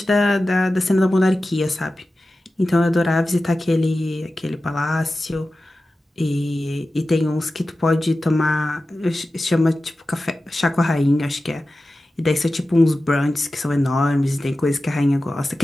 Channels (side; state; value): both; normal; correlation 0.94